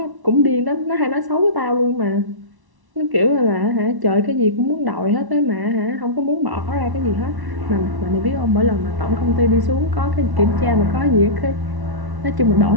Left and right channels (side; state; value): left; late; 1.1 ms